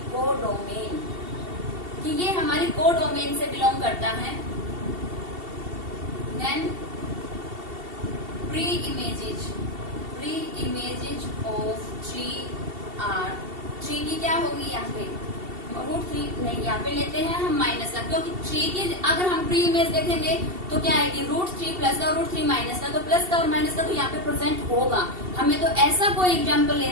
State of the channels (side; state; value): left; late; 2.7 ms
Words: कोडोमेन, कि ये हमारी कोडोमेन से बिलोंग करता है। Then pre images of 3R। 3 की क्या होगी यहाँ पे? √3 नहीं, यहाँ पे लेते हैं हम माइनस का, क्योंकि 3 की अगर हम प्री इमेज देखेंगे तो क्या आएगी? √3 प्लस का और √3 माइनस का। तो प्लस का और माइनस का तो यहाँ पे प्रेजेंट होगा। हमें तो ऐसा कोई एग्जाम्पल